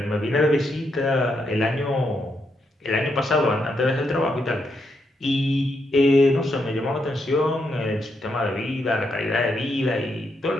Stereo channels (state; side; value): normal; both; correlation 0.80